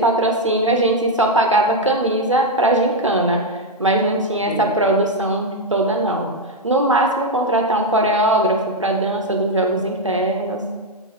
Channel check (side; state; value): both; normal; correlation 0.03